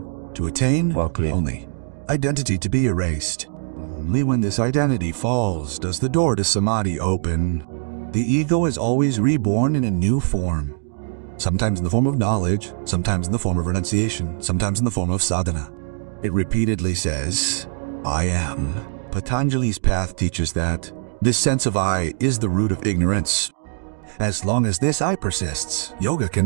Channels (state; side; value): silent; left; digital silence